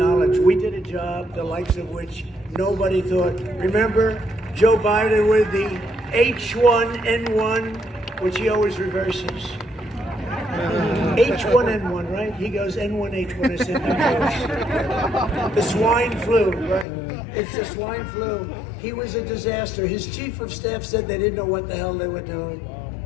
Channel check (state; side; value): drops out; right; at 16.9 s